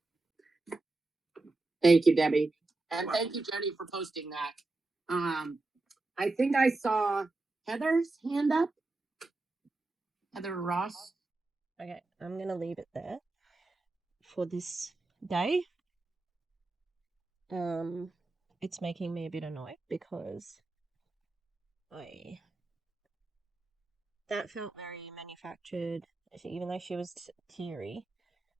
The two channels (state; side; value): quieter; left; 3.2 dB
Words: Thank you, Debbie. And thank you, Jenny, for posting that. I think I saw Heather's hand up. Heather Ross. Okay, I'm gonna leave it there for this day. It's making me a bit annoyed because that felt very manufactured. Even though she was teary,